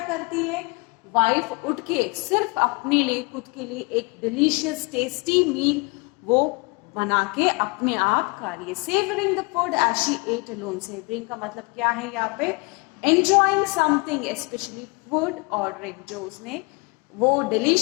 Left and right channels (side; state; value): right; quieter; 29.7 dB